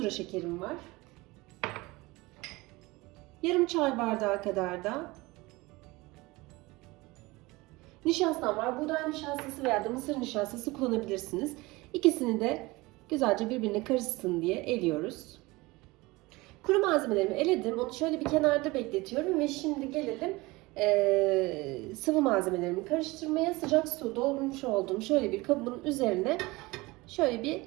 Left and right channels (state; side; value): quieter; left; 22.1 dB